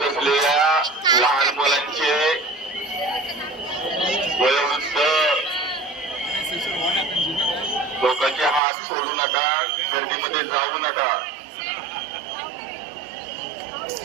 असलेल्या लहान मुलांचे वयोवृद्ध लोकांचे हात सोडू नका, गर्दीमध्ये जाऊ नका.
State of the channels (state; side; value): drops out; left; at 8.6 s